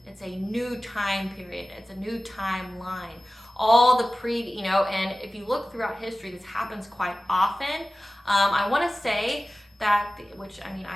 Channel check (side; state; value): both; normal; correlation 0.96